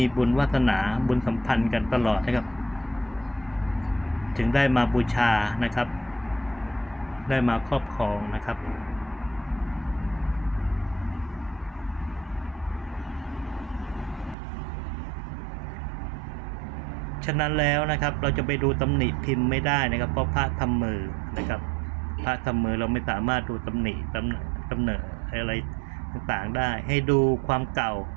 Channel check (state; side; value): drops out; left; at 14.4 s